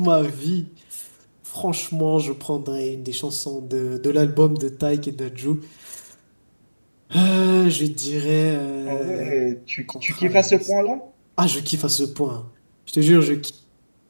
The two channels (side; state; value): both; inverted; correlation -1.00